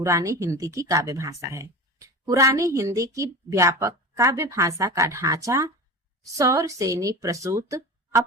हिंदी की काव्य भाषा है। पुरानी हिंदी की व्यापक काव्य भाषा का ढांचा सौर सेनी प्रसूत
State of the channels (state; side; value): normal; both; correlation 0.30